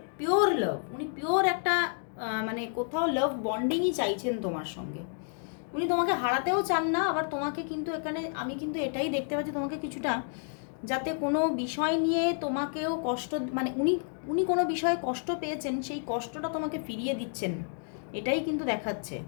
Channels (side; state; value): right; silent; 58 dB below the other